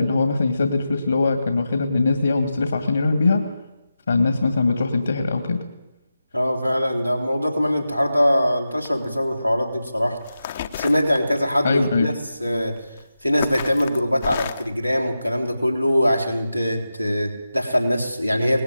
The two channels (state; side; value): inverted; both; correlation -0.91